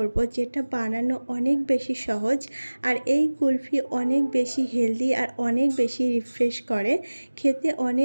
যেটা বানানো অনেক বেশি সহজ, আর এই কুলফি অনেক বেশি হেলদি আর অনেক বেশি রিফ্রেশ করে, খেতে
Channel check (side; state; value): both; inverted; correlation -1.00